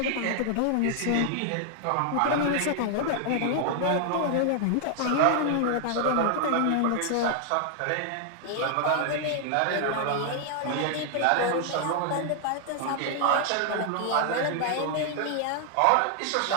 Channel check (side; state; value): both; different; correlation 0.00